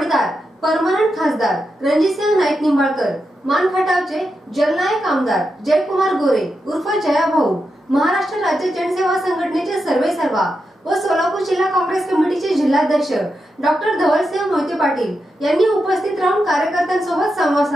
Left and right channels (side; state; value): both; normal; correlation 0.87